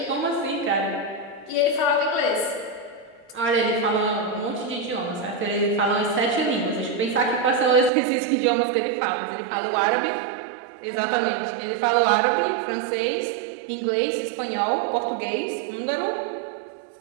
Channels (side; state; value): left; drops out; at 7.9 s